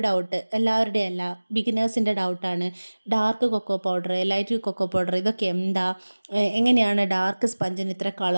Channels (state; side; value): inverted; both; correlation -1.00